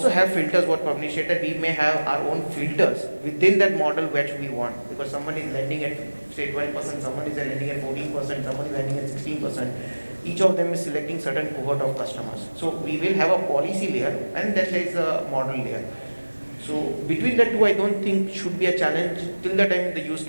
have filters, what Pavneesh said, that we may have our own filters within that model which we want. Because someone is lending at say 12%, someone is lending at 14%, someone is lending at 16%. Each of them is selecting certain cohort of customers. So we will have a policy layer and then there is a model layer. So between the two, I don't think should be a challenge till the time the use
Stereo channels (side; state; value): both; inverted; correlation -1.00